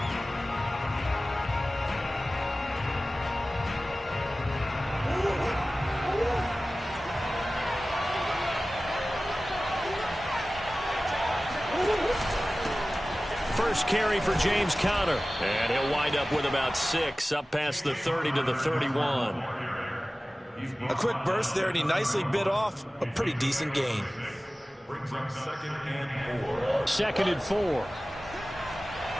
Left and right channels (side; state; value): both; normal; correlation 0.97